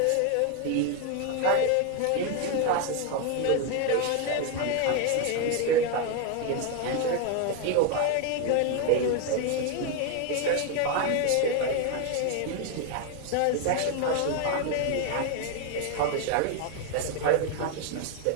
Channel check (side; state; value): both; different; correlation 0.01